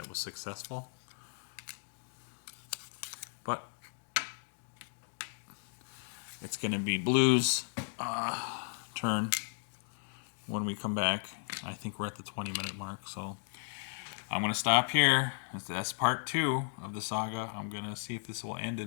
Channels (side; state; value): right; silent; digital silence